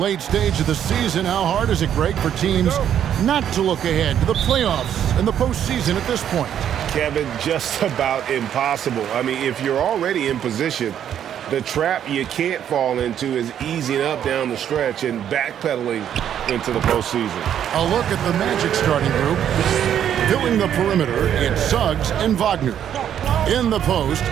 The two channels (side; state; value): left; quieter; 9.7 dB